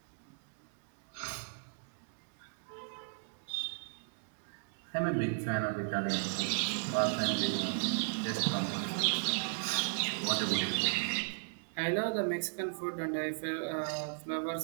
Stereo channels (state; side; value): silent; left; digital silence